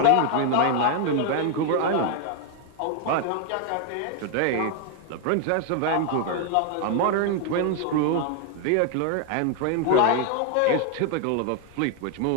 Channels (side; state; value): both; different; correlation 0.00